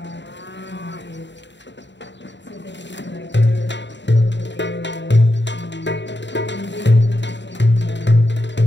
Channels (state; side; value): late; right; 0.52 ms